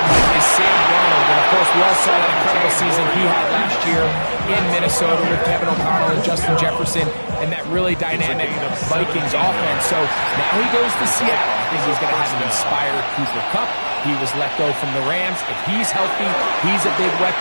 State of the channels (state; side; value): inverted; both; correlation -1.00